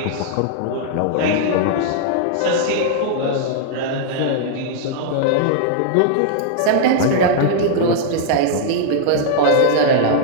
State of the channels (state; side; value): different; both; correlation -0.01